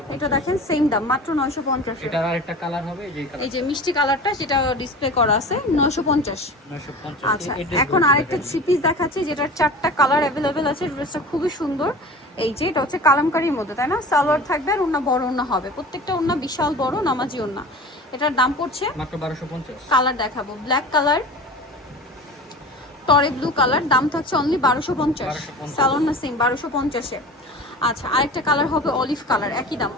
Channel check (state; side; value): normal; both; correlation 0.36